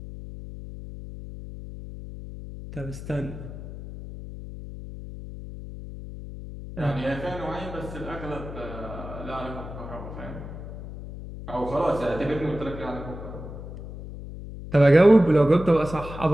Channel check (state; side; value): noise; left; hum, 11 dB below the sound